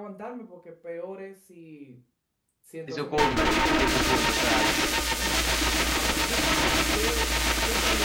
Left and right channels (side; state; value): both; identical; correlation 1.00